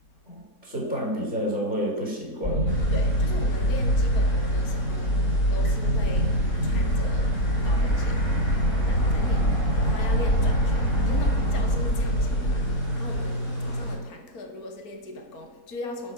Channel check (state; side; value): late; right; 4.4 ms